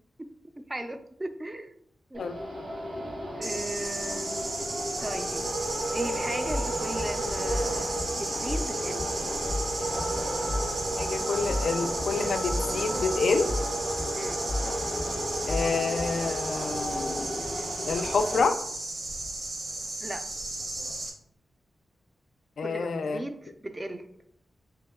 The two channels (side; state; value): both; normal; correlation 0.88